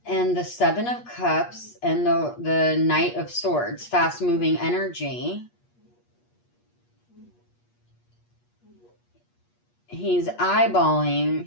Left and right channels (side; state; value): right; late; 8.4 ms